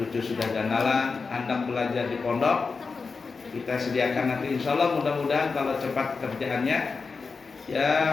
sudah ganalan, anak belajar di pondok. Kita sediakan nanti, insya Allah mudah-mudahan kalau cepat kerjaannya, ya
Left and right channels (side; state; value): right; quieter; 4.7 dB